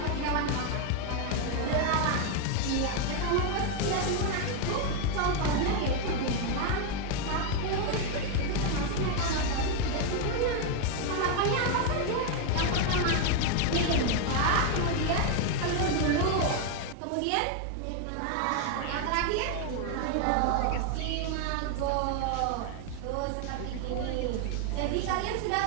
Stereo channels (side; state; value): both; different; correlation 0.01